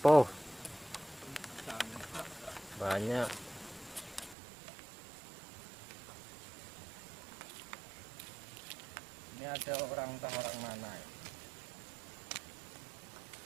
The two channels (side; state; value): left; drops out; at 4.4 s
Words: Banyak. Ini ada orang mana?